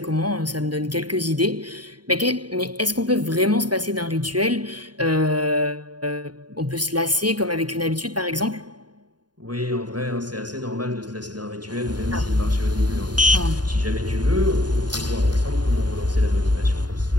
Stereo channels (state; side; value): late; left; 0.70 ms